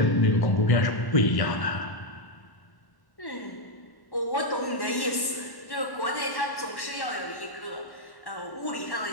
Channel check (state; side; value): late; right; 1.1 ms